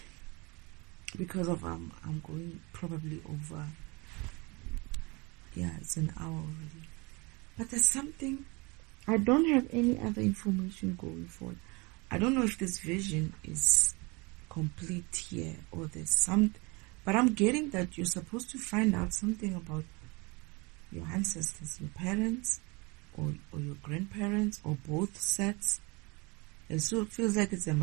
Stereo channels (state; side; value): quieter; left; 27.3 dB